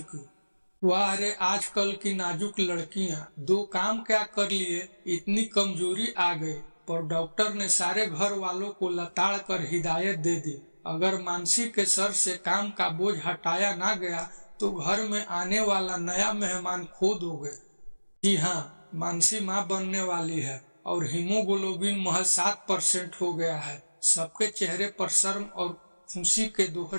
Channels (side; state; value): both; inverted; correlation -1.00